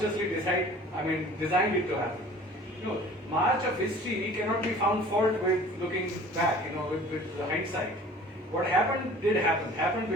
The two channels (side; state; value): both; normal; correlation 0.47